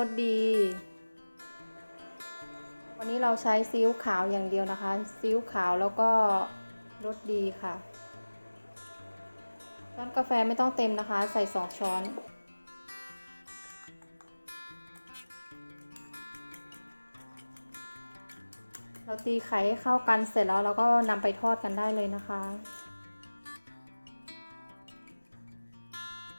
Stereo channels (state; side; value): inverted; both; correlation -1.00